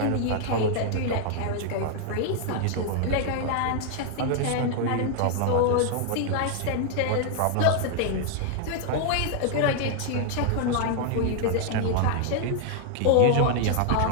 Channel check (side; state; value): both; different; correlation 0.00